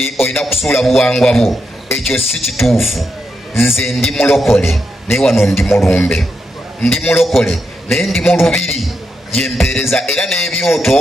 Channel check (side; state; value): both; normal; correlation 0.84